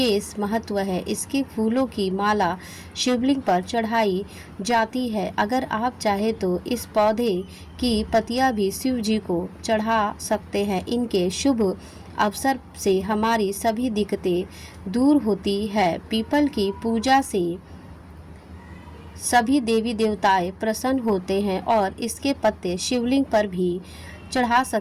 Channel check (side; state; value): both; identical; correlation 1.00